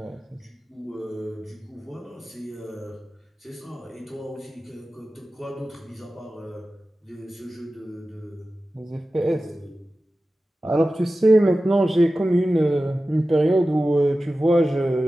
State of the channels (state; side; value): normal; both; correlation 0.95